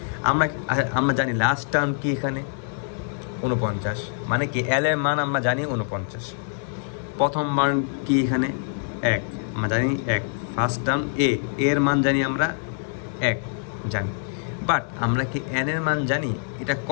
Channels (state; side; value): silent; right; 62 dB below the other